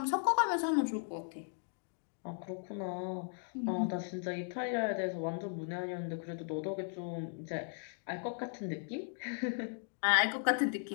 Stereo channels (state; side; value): silent; right; 53 dB below the other